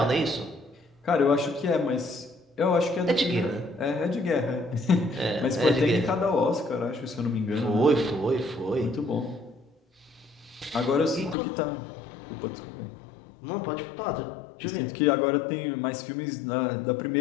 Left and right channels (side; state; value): right; drops out; at 11.4 s